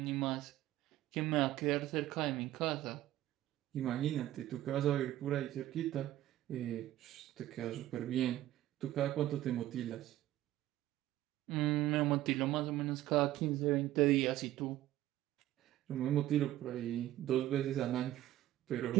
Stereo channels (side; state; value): left; quieter; 14.3 dB